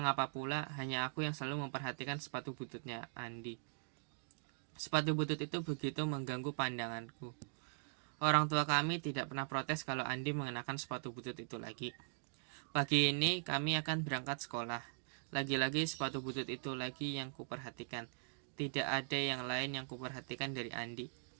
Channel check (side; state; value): left; silent; digital silence